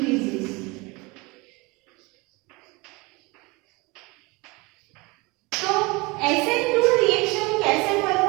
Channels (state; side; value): quieter; left; 25.2 dB